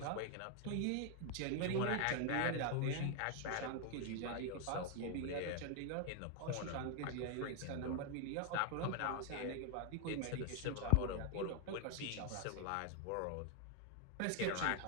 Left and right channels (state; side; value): different; both; correlation 0.01